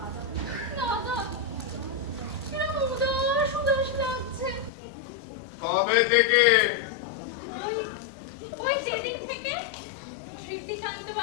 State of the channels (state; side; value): drops out; right; at 4.7 s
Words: দাদা, কিরকম উদাস উদাস লাগছে। কবে থেকে? ওই ওই যেদিন থেকে স্মৃতিকান্ত